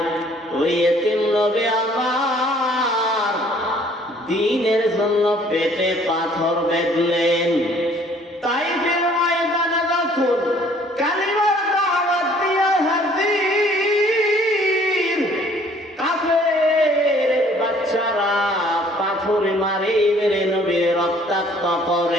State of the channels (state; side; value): normal; both; correlation 0.58